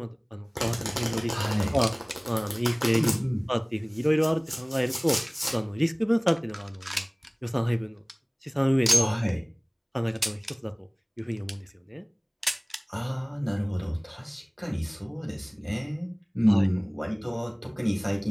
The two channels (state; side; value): identical; both; correlation 1.00